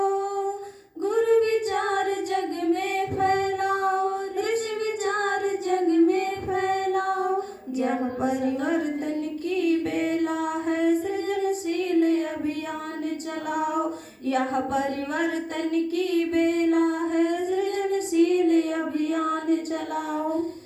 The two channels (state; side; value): identical; both; correlation 1.00